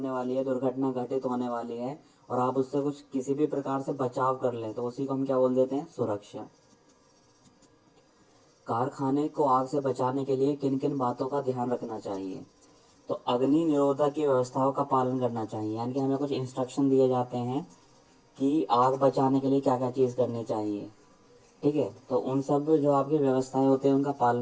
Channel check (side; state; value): both; identical; correlation 1.00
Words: वाली है, दुर्घटना घटित होने वाली है और आप उससे कुछ किसी भी प्रकार से बचाव कर लें, तो उसी को हम क्या बोल देते हैं, सुरक्षा। कारखाने को आग से बचाने के लिए किन किन बातों का ध्यान रखना चाहिए। तो अग्नि निरोधक की व्यवस्थाओं का पालन करना चाहिए, यानी कि हमें कुछ इंस्ट्रक्शन दिए जाते हैं कि आग बचाने के लिए क्या क्या चीज़ करनी चाहिए। ठीक है, तो उन सब जो आपकी व्यवस्थाएं होती हैं उनका